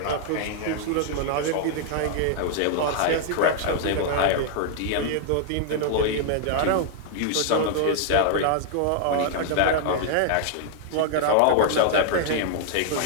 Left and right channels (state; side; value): different; both; correlation -0.01